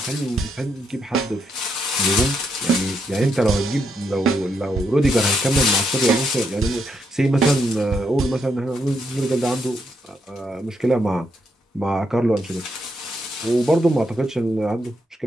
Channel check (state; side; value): normal; both; correlation 0.78